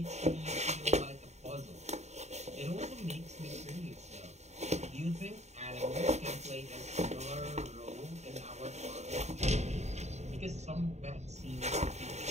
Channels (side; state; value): left; late; 0.32 ms